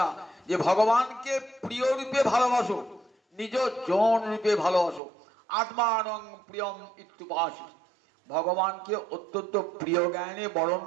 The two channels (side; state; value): left; drops out; at 5.0 s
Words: যে ভগবানকে প্রিয় রূপে ভালোবাসো, নিজ জন রূপে ভালোবাসো, আত্মানং প্রিয়ম ইত্যুপাসি, ভগবানকে অত্যন্ত প্রিয় জ্ঞানে বরণ